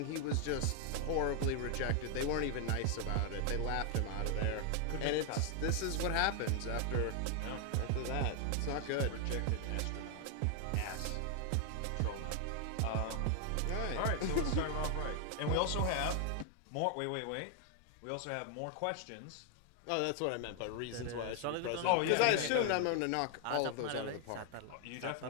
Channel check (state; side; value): different; both; correlation 0.00